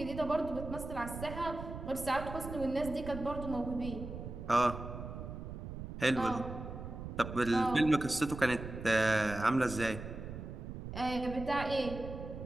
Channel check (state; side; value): noise; right; rumble, 9 dB below the sound